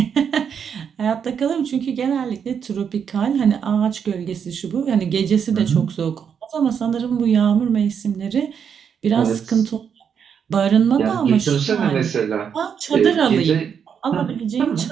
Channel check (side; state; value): left; quieter; 7.4 dB